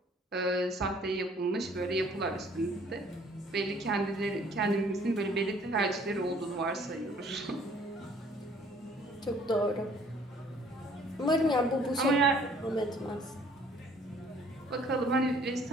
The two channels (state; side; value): normal; both; correlation 0.58